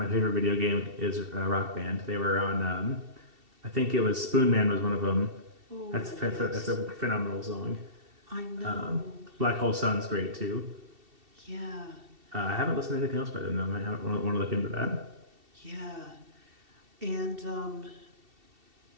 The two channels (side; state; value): left; late; 2.7 ms